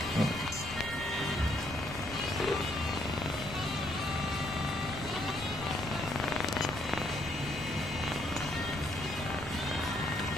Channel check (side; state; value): left; noise; rumble, 12 dB below the sound